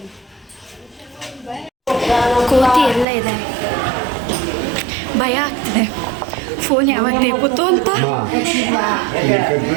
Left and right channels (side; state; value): left; drops out; at 3.1 s